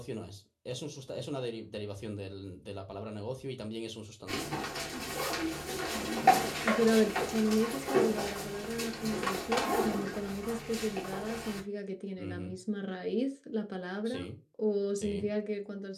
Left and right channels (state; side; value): identical; both; correlation 1.00